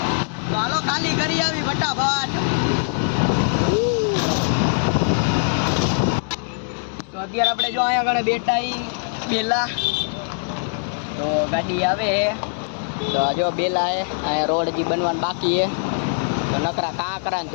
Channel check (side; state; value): right; silent; 64 dB below the other